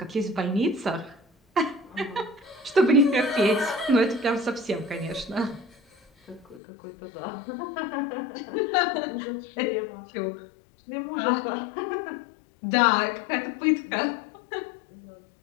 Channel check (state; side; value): drops out; right; at 6.6 s